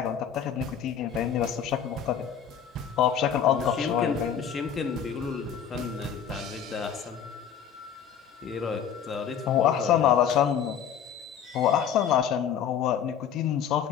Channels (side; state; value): right; quieter; 8.2 dB